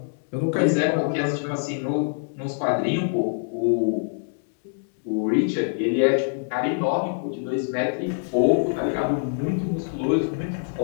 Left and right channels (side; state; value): right; silent; digital silence